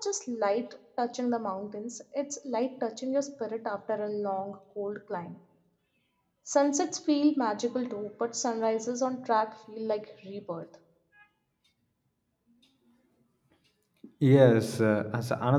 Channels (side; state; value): both; identical; correlation 1.00